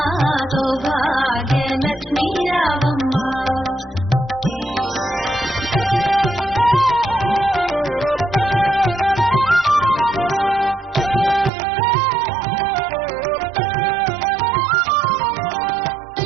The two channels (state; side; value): drops out; left; at 11.5 s